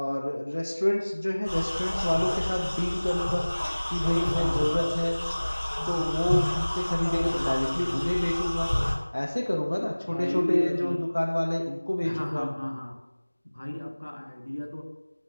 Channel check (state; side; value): inverted; both; correlation -1.00